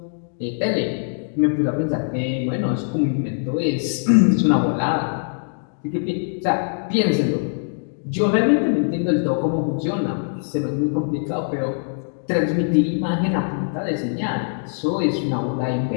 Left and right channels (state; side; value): silent; right; digital silence